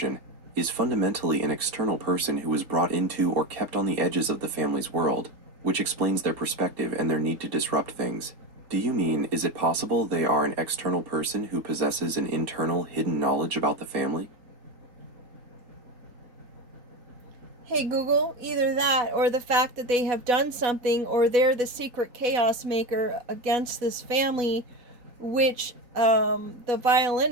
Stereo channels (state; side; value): late; left; 3.8 ms